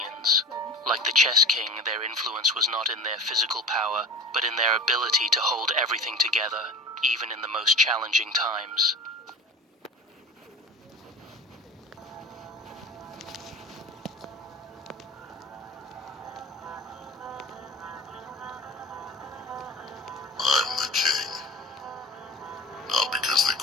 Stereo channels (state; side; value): normal; both; correlation 0.35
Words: Like the chess king, their influence was not in their physical power, but in their ability to hold everything together, even in the most challenging times. I'm the king, not because they